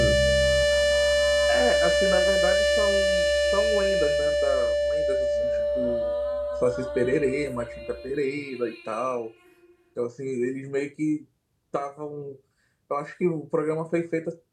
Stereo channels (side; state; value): both; identical; correlation 1.00